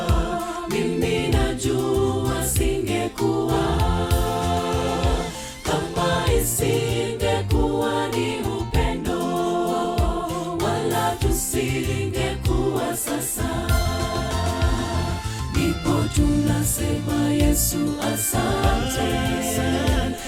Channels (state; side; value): identical; both; correlation 1.00